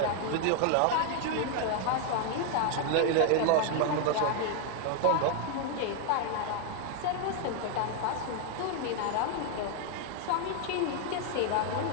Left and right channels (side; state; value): both; different; correlation 0.00